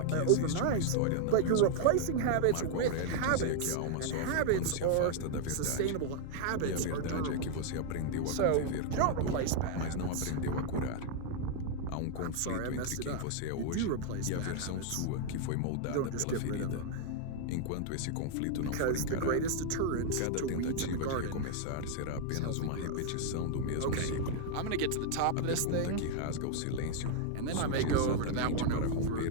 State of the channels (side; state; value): both; different; correlation 0.00